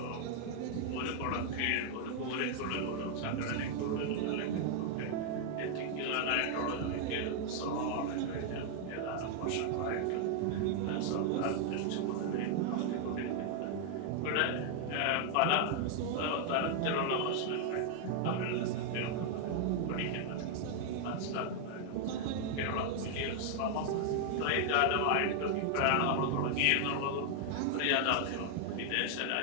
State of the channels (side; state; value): both; different; correlation 0.00